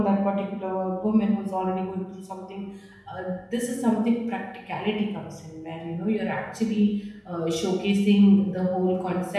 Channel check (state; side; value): identical; both; correlation 1.00